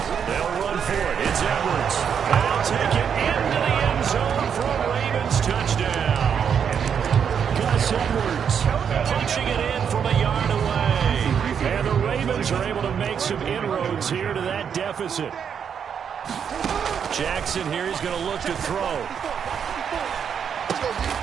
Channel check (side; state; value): left; quieter; 7.5 dB